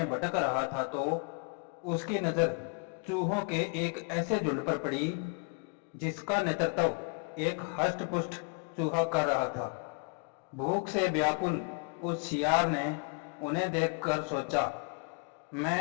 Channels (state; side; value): quieter; right; 34.7 dB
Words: भटक रहा था तो उसकी नज़र चूहों के एक ऐसे झुंड पर पड़ी जिसका नेतृत्व एक हष्ट-पुष्ट चूहा कर रहा था। भूख से व्याकुल उस सियार ने उन्हें देखकर सोचा,